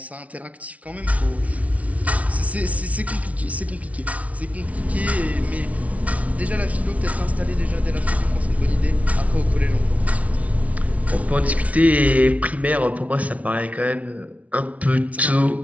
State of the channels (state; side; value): late; left; 0.067 ms